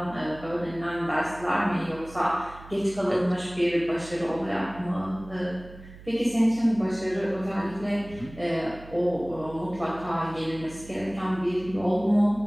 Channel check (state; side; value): noise; right; hum, 18 dB below the sound